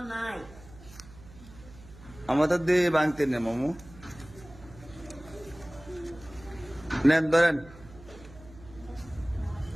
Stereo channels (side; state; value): right; noise; hum, 19 dB below the sound